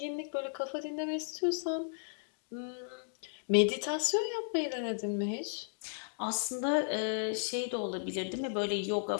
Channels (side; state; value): right; silent; digital silence